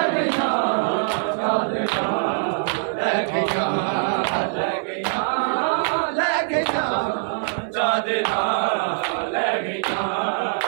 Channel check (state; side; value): silent; left; 56 dB below the other